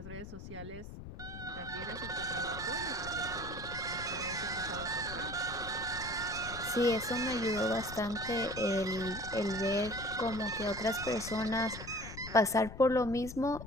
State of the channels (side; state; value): left; noise; rumble, 11 dB below the sound